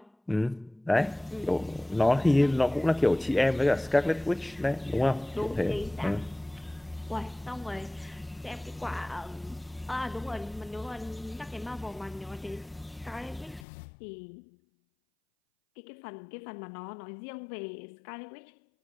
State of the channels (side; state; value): right; drops out; at 13.7 s